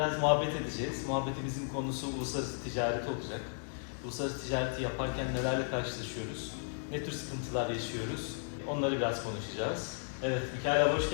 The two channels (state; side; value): silent; right; digital silence